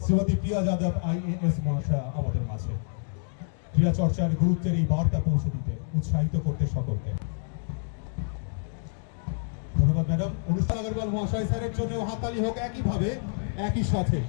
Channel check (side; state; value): right; silent; digital silence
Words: শ্রীমতী প্রিয়া যাদব আইএএস মহাশয় আমাদের মাঝে ক্রীড়া চর্চার গুরুত্বের এই বার্তা পৌঁছে দিতে উৎসাহিত করতে সকলকে ধন্যবাদ ম্যাডাম। অনুষ্ঠান আগরওয়াল মহাশয় স্যারের জন্য হাতালি হোক। একইভাবে একই সাথে